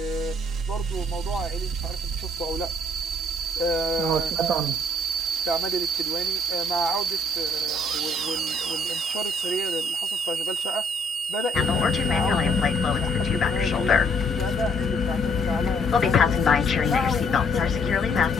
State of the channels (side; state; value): both; normal; correlation 0.65